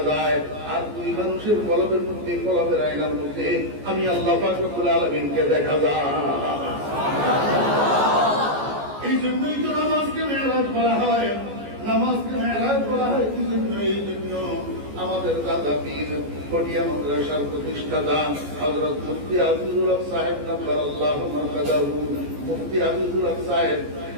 যায়, আর দুই মানুষের কলবের মধ্যে কলবের আয়নার মধ্যে আমি আল্লাহ পাক রব্বুল আলামিনকে দেখা যায়। এই জন্যই তো নামাজকে মেরাজ বলা হয়। নামাজকে মেরাজ বলা হয় কি জন্য? এই জন্য আমাদের দাদা পীর কটিয়া মাদ্রাসার প্রতিষ্ঠাতা হযরত মুফতি আজিজুল হক সাহেব নব্বরাল্লাহু মারকাদাহু, মুফতি আজিজুল হক সাহেব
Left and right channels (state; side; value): late; left; 14 ms